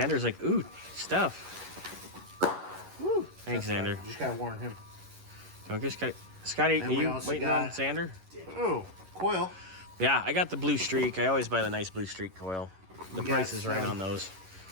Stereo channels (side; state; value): left; late; 11 ms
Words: like, ooh, stuff. Woo. Thanks, That's Xander. fine. Just gotta warn him. Don't get Scotty. Scotty, And are we you also waiting got- on Xander? Oh, coil. Yeah, I got the blue streak. I always buy the nice blue streak coil. The We price got is right some- on those.